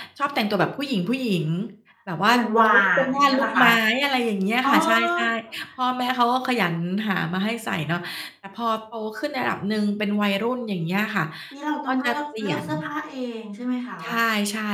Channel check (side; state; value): both; identical; correlation 1.00